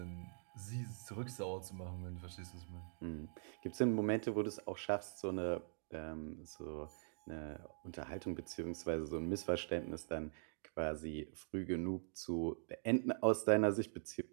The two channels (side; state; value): left; silent; digital silence